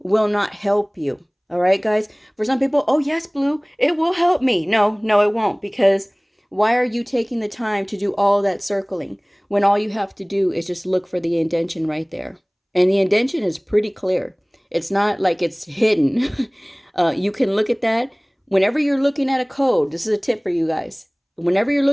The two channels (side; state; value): both; identical; correlation 1.00